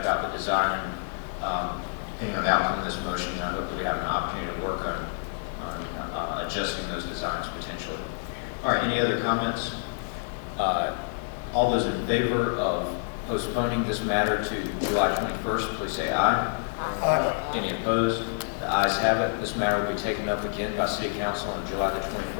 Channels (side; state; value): right; silent; digital silence